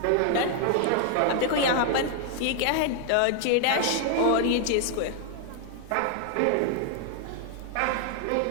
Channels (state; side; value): different; both; correlation 0.00